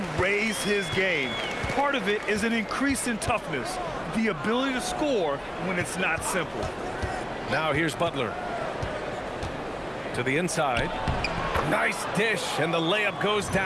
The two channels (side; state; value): both; identical; correlation 1.00